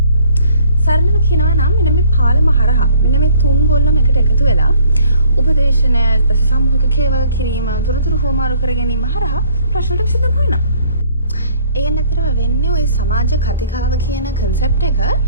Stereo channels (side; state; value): both; inverted; correlation -0.58